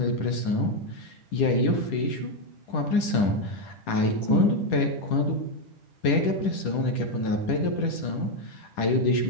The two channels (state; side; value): late; right; 10 ms